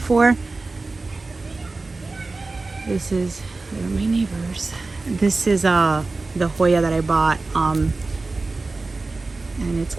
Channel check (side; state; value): left; quieter; 3.5 dB